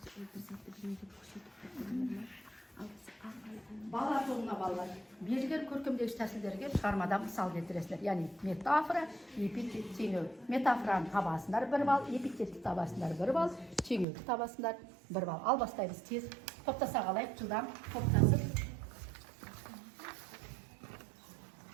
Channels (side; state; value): left; drops out; at 14.1 s